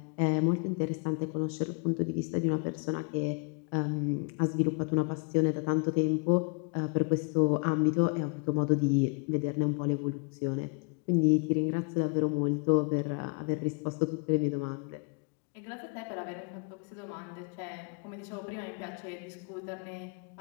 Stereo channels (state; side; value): quieter; right; 31.6 dB